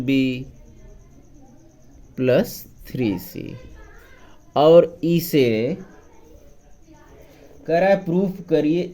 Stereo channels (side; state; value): both; identical; correlation 1.00